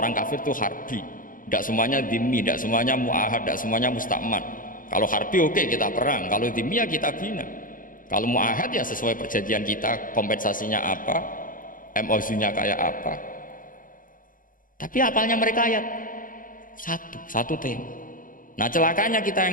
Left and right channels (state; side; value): late; right; 0.40 ms